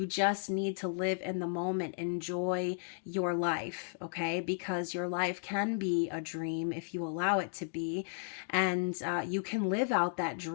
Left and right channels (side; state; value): right; silent; digital silence